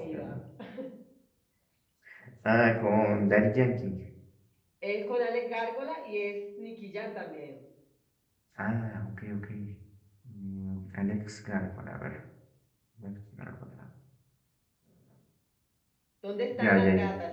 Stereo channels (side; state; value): both; identical; correlation 1.00